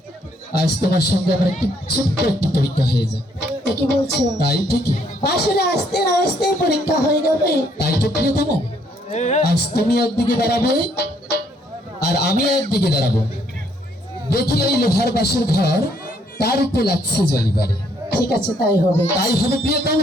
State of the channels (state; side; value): normal; both; correlation 0.69